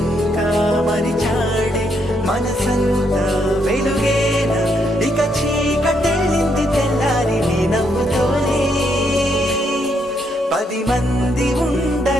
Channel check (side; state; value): both; normal; correlation 0.75